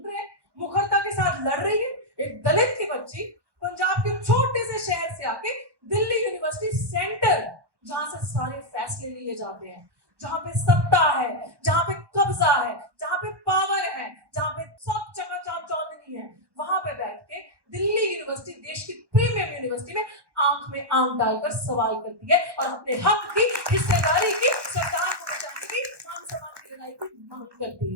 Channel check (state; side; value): late; left; 1.2 ms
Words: रहे हैं, मुखरता के साथ लड़ रही है। एक दलित की बच्ची पंजाब के छोटे से शहर से आके दिल्ली यूनिवर्सिटी सेंटर, जहां से सारे फैसले लिए जाते हैं, जहां पे सत्ता है, जहां पे कब्जा है, जहां पे पावर है, जहां पे सब चकाचौंध चौधरी है, वहां पे बैठ के दिल्ली यूनिवर्सिटी, देश की प्रीमियर यूनिवर्सिटी में आंख में आंख डालकर सवाल करती है और अपने हक की, हिस्सेदारी की, संविधान को बचाने की, मान सम्मान की लड़ाई की मांग करती